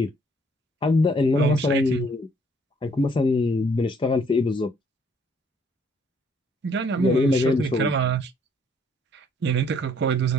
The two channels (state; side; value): normal; both; correlation 0.63